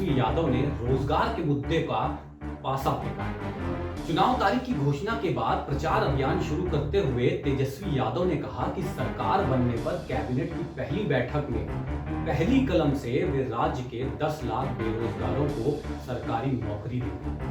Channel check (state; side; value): identical; both; correlation 1.00